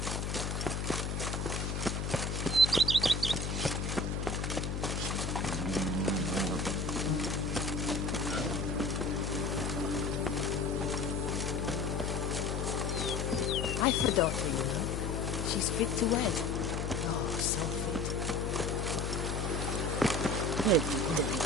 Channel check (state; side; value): noise; left; hum, 1 dB below the sound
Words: I've a daughter, you know. She's fit to wed. Oh, so fit.